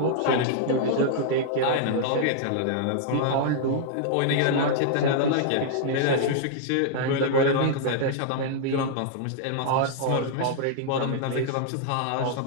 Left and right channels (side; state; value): both; different; correlation -0.01